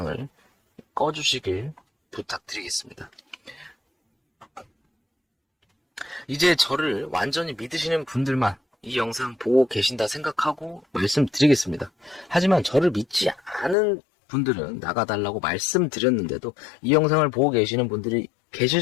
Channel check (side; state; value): right; drops out; at 13.8 s